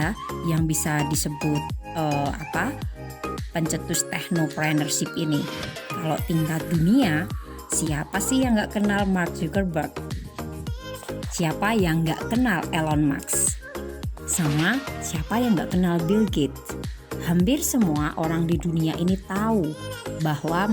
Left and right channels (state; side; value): identical; both; correlation 1.00